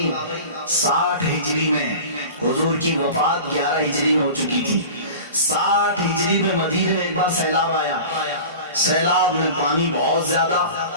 60 ہجری میں، حضور کی وفات 11 ہجری میں ہو چکی تھی۔ 60 ہجری میں مدینے میں ایک بار سیلاب آیا، سیلاب میں پانی بہت زیادہ،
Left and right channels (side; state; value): both; inverted; correlation -0.36